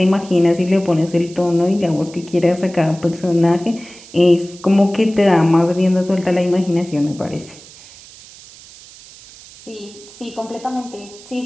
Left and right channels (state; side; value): noise; right; hiss, 20 dB below the sound